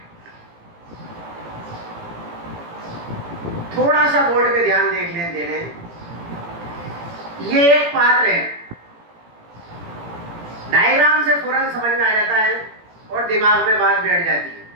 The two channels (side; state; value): left; late; 17 ms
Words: थोड़ा सा बोर्ड पे ध्यान देख लें देने। ये एक पात्र है, डायग्राम से फौरन समझ में आ जाता है और दिमाग में बात बैठ जाती है।